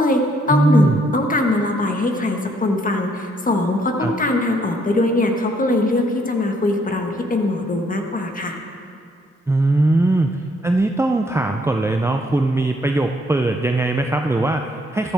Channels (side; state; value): both; normal; correlation 0.69